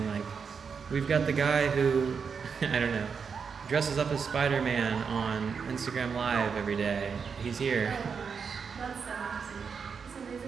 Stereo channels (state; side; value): quieter; left; 6.0 dB